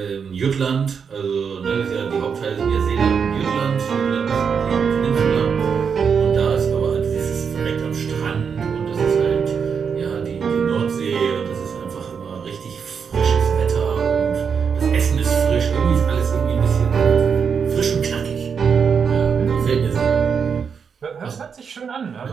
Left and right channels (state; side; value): quieter; left; 6.5 dB